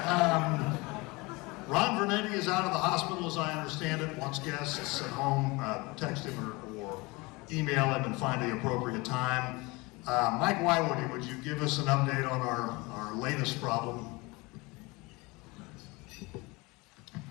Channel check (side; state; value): right; quieter; 24.6 dB